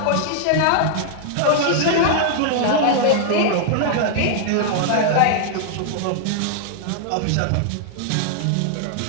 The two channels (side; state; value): both; different; correlation -0.01